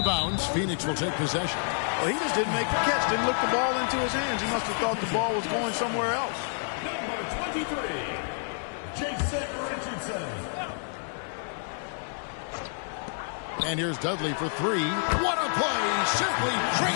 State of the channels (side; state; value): right; silent; 59 dB below the other